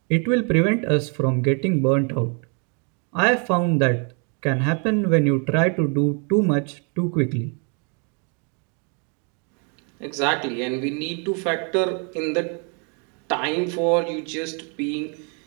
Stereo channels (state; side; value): quieter; left; 37.0 dB